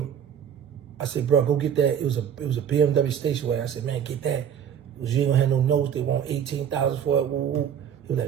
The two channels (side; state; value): left; quieter; 8.7 dB